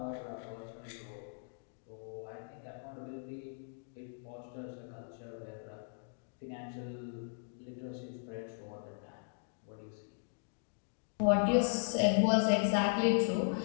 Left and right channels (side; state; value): right; silent; digital silence